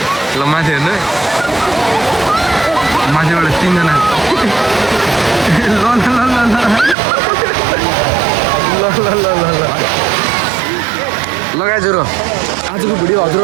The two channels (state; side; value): drops out; left; at 7.0 s